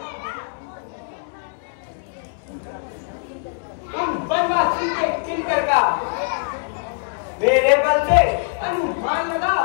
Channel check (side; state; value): right; silent; 64 dB below the other